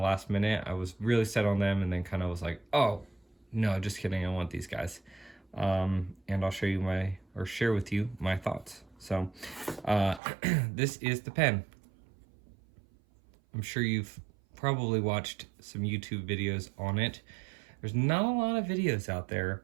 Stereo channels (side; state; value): left; drops out; at 10.2 s